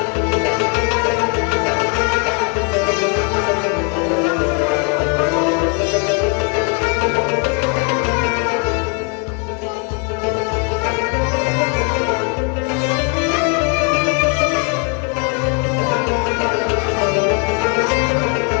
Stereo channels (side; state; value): right; quieter; 37.4 dB